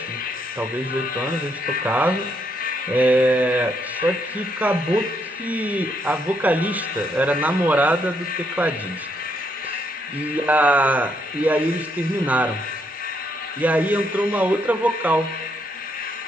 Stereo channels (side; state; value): both; normal; correlation 0.74